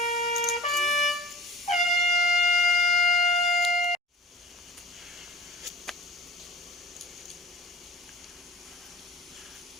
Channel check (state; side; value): normal; both; correlation 0.43